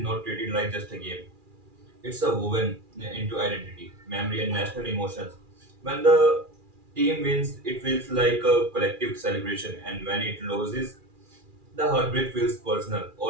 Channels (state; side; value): late; left; 2.4 ms